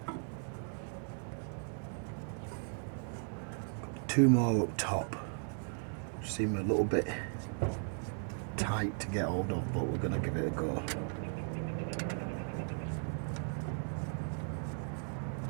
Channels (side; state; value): left; silent; 53 dB below the other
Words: Two more up top, which seem a little bit tight to get hold of, but we're going to give it a go.